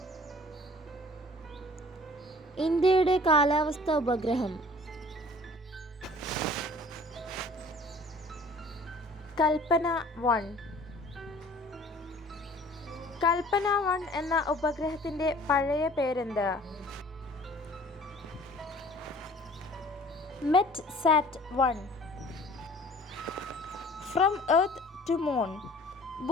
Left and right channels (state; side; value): normal; both; correlation 0.50